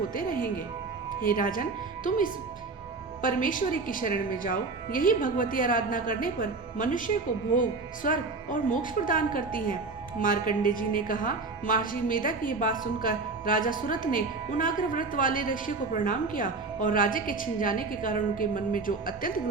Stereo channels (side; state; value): left; quieter; 4.0 dB